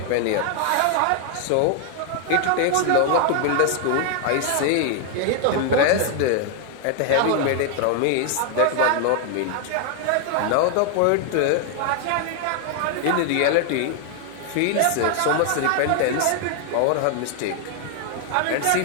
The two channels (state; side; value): different; both; correlation 0.00